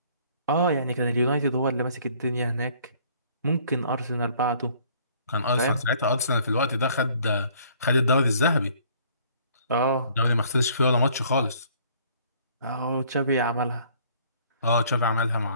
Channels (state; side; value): inverted; both; correlation -0.58